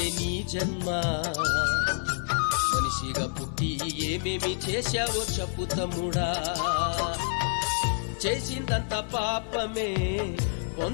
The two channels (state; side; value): silent; right; 59 dB below the other